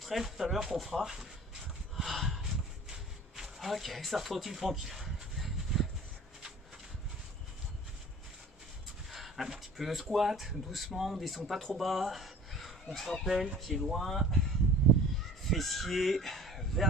tout à l'heure qu'on fera. Ok, ça retrottine tranquille. Un petit peu de squat, doucement, on descend pas trop bas. On se rappelle, pied loin, fessier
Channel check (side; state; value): both; normal; correlation 0.45